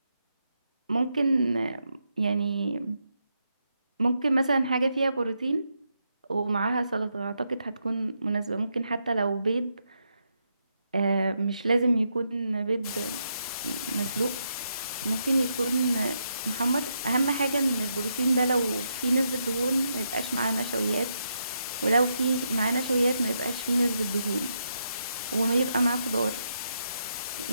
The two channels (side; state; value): both; inverted; correlation -0.81